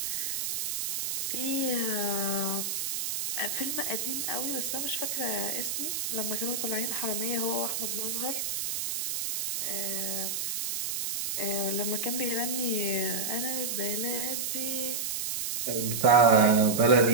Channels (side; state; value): right; noise; hiss, 1 dB below the sound